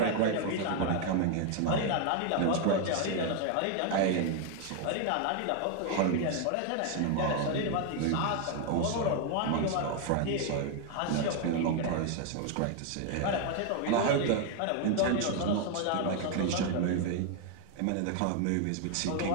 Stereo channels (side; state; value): both; different; correlation 0.00